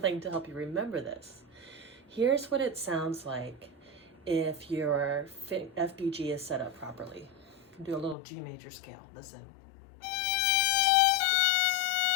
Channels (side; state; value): right; drops out; at 8.2 s